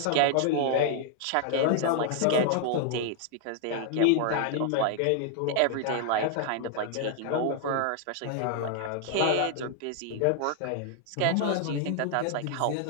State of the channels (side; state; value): both; different; correlation 0.00